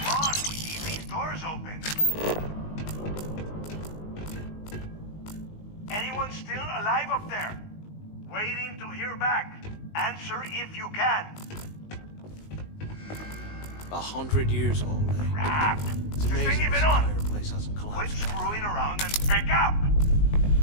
on, we need these doors open. Anyone still alive up there? Waiting to hear back. Answer if you can. 100 years old, eh? Crap! It's Is this amazing thing this even on? entire place hasn't Quit collapsed. screwing around and pick up!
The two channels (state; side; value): late; right; 19 ms